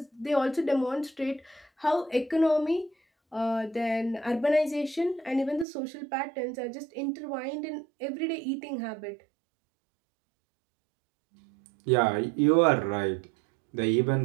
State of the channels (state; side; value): drops out; left; at 5.7 s